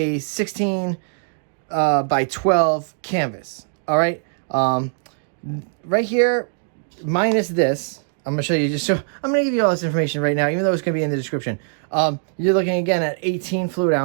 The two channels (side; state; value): left; silent; digital silence